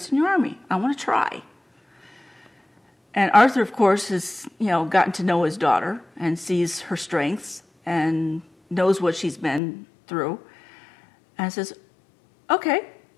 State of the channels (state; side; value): drops out; right; at 9.6 s